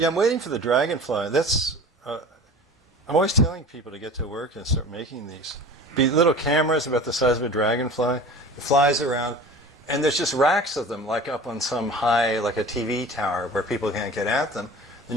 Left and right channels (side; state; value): both; normal; correlation 0.39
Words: I'm waiting for the dragonfly. That's. I'm always telling people to get to work and start making these. Be little cameras about the size of a dragonfly. It flies around. And there's just racks of them, like up on some high, like a TV tower, where people can't get at them. Then